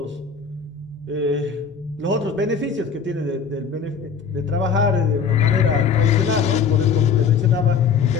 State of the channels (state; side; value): quieter; right; 6.1 dB